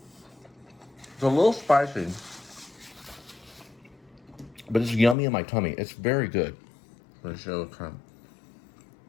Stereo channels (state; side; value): drops out; right; at 5.2 s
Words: a little spicy, but it's yummy in my tummy. It's very good. Let me show it kind